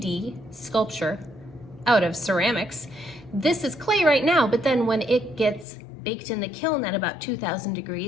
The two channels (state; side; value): drops out; right; at 5.7 s